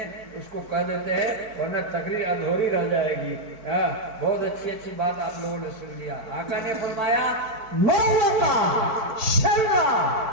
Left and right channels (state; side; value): late; left; 4.5 ms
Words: उसको कह देते हैं वरना तकरीर अधूरी रह जाएगी। बहुत अच्छी बात आप लोगों ने सुन लिया। आका ने फरमाया मौलका शर्रा